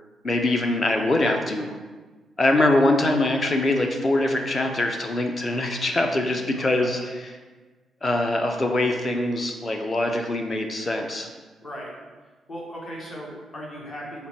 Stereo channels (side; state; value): both; normal; correlation 0.83